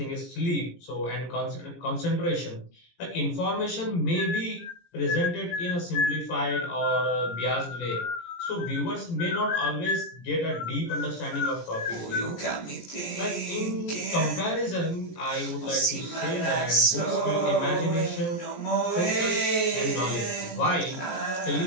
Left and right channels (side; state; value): right; late; 17 ms